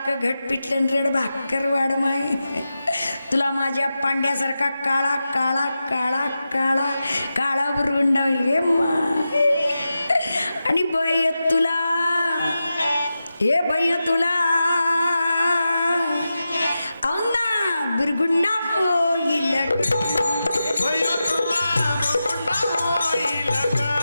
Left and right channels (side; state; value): both; inverted; correlation -0.91